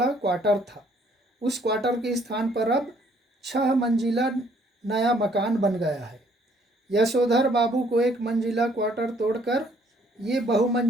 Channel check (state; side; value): normal; both; correlation 0.64